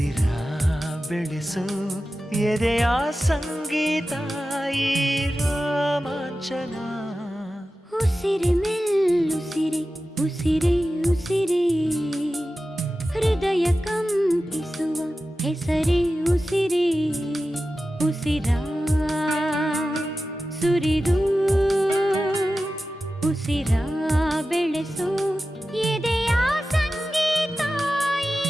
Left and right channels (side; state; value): both; normal; correlation 0.94